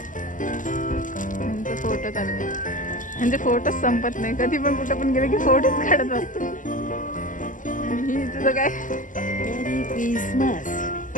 म्हणजे फोटो चालले, म्हणजे फोटोच संपत नाही. कधी पण कुठं पण गेले की फोटोच काढत असतो. आणि तुझं काय? मेरी क्रिसमस.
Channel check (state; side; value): late; right; 0.38 ms